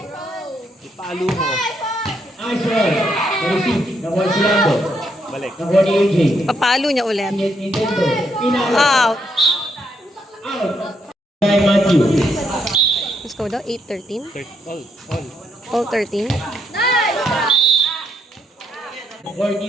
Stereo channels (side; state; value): both; normal; correlation 0.76